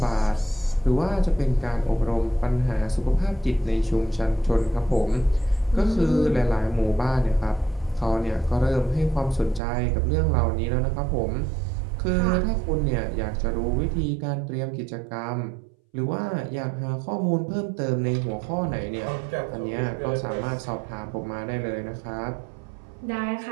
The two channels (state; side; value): drops out; left; at 9.6 s